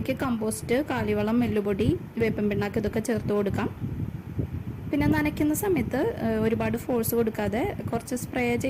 കമ്പോസ്റ്റ്, കാലിവളം, എല്ലുപൊടി, വേപ്പിൻ പിണ്ണാക്ക് ഇതൊക്കെ ചേർത്ത് കൊടുക്കാം. പിന്നെ നനയ്ക്കുന്ന സമയത്ത് ഒരുപാട് ഫോഴ്സ് കൊടുക്കാതെ കുറച്ച് സ്പ്രേ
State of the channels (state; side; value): identical; both; correlation 1.00